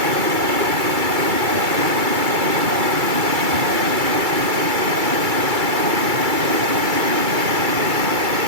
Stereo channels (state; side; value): late; left; 2.3 ms